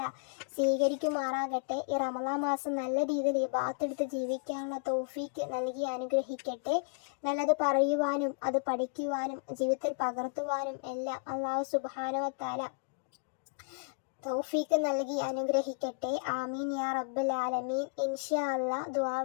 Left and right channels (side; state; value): right; quieter; 39.0 dB